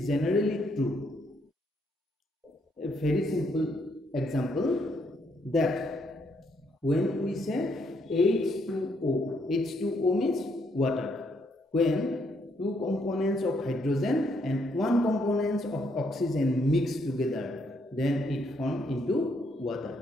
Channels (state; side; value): normal; both; correlation 0.73